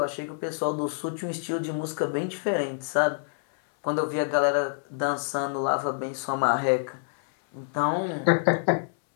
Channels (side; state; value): right; silent; 60 dB below the other